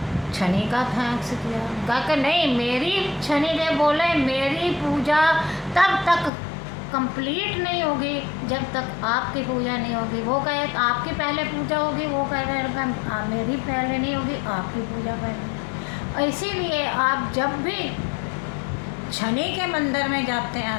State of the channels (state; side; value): drops out; right; at 6.3 s